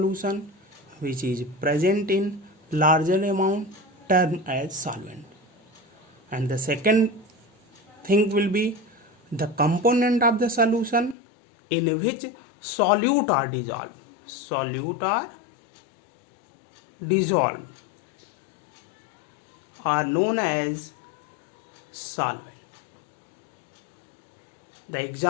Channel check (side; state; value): right; drops out; at 11.2 s